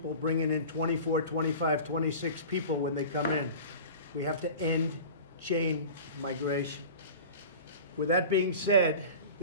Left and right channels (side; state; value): both; inverted; correlation -0.37